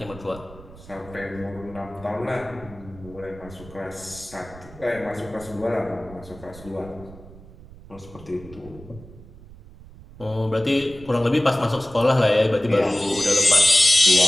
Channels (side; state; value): right; noise; rumble, 19 dB below the sound